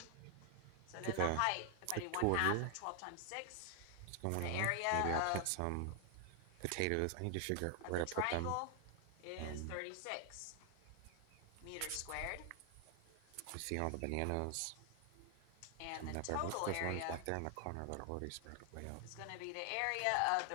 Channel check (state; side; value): different; both; correlation 0.00